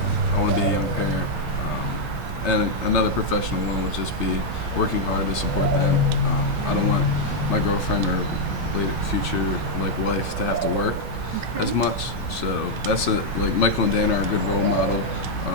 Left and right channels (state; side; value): late; right; 1.6 ms